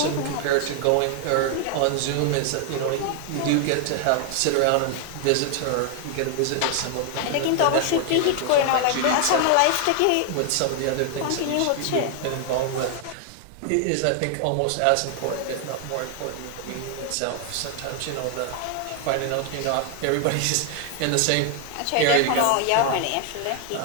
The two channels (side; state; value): both; different; correlation 0.00